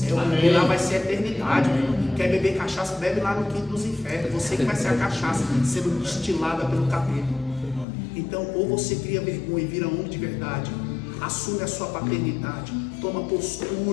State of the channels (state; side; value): drops out; right; at 7.9 s